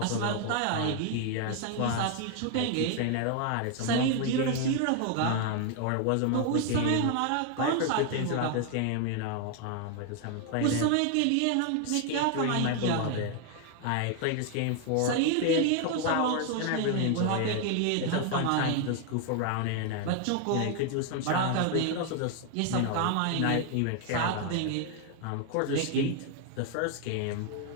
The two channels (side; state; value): both; different; correlation 0.00